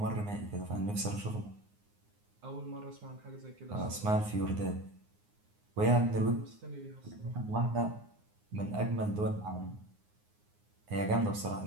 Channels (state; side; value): late; left; 9.6 ms